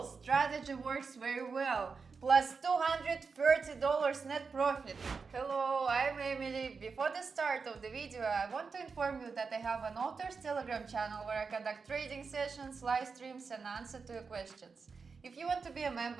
Strategy works very well. Plus $230 net profit. Hello, I'm Emily. Before the start of the video, I want to inform you that I have an author's Telegram channel where I conduct trading sessions, live streams and answer to your questions. If you want to be a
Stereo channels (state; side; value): quieter; left; 5.0 dB